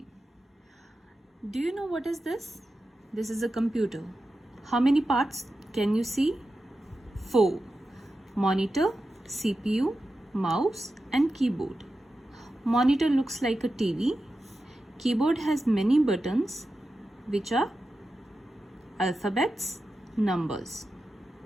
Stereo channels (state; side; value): normal; both; correlation 0.92